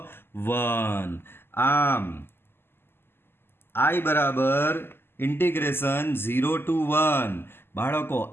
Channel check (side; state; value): right; late; 0.11 ms